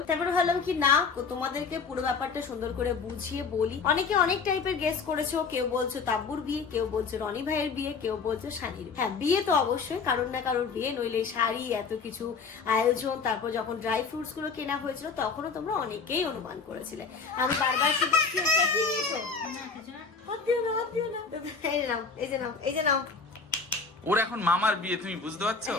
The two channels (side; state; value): right; quieter; 5.0 dB